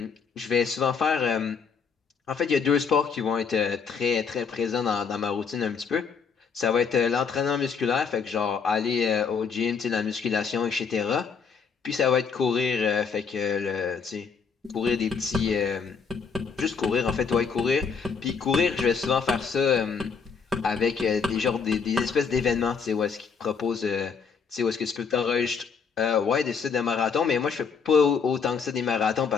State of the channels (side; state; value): right; quieter; 5.9 dB